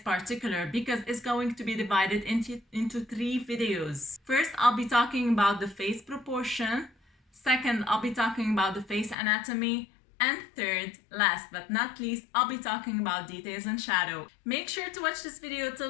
because it's going to be divided into 3 videos. First, I'll be talking about the face proportion. Second, I'll be talking about the face anatomy. And third, last but not least, I'll be talking about details and shadow. Make sure to watch this video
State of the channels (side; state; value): right; drops out; at 9.2 s